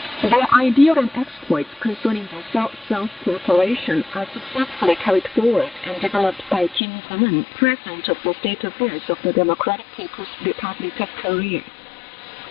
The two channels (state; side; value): drops out; right; at 6.8 s